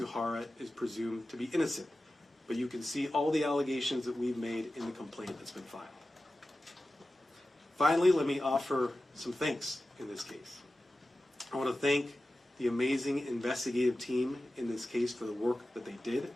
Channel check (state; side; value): normal; both; correlation 0.94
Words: is presumed to be innocent, but you can see all the allegations that we've made in the complaint that's been filed. Finally, let me offer some thanks in this case. I want to thank the amazing investigative team in this case for the work that they did.